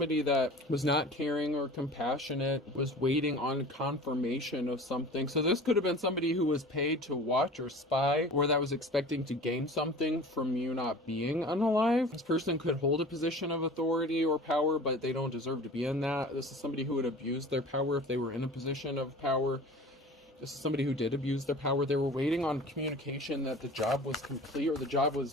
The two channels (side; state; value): both; normal; correlation 0.40